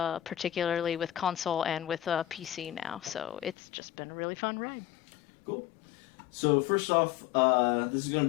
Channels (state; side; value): drops out; right; at 3.6 s